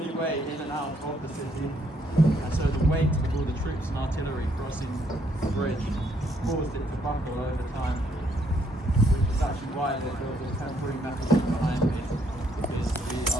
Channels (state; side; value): normal; both; correlation 0.70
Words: way in and out of the city. And so the weight of all the troops and artillery crossing the bridge caused it to buckle over time, which is actually why they built the temporary mechanism behind me, because the